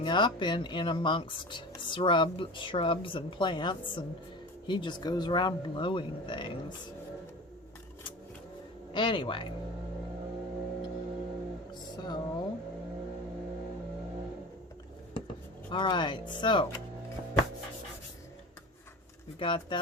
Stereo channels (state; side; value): normal; both; correlation 0.33